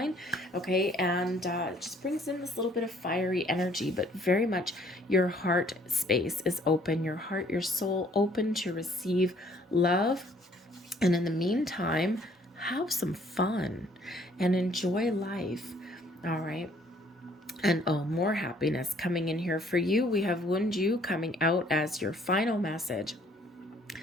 Okay, and it just brings in this little bit of fiery energy, but very much your heart space is open, your heart, your soul open to receive love. And in the meantime, have some fun and enjoy life. All right. And oh, more happiness coming in here for you. We have Wunju coming out as your final message.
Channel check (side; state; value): both; normal; correlation 0.61